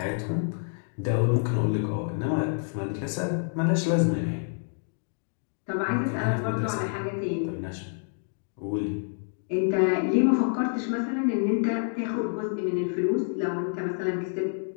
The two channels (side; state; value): right; silent; digital silence